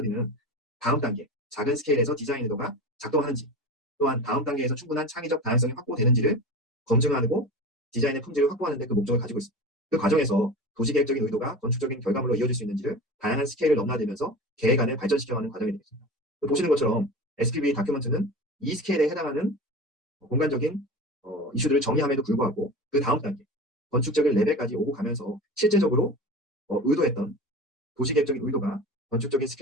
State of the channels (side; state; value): both; normal; correlation 0.32